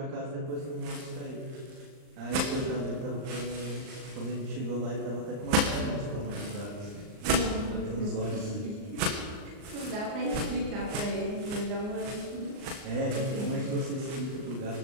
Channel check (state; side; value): late; left; 39 ms